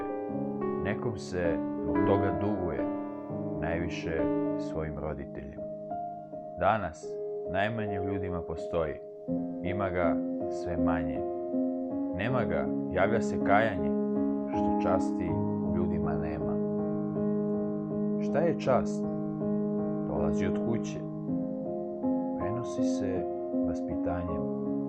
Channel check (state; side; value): identical; both; correlation 1.00